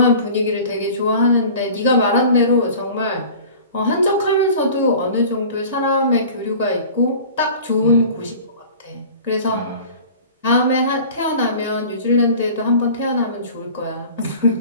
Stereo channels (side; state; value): both; inverted; correlation -0.42